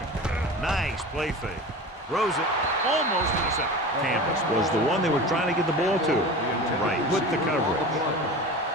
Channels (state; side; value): normal; both; correlation 0.33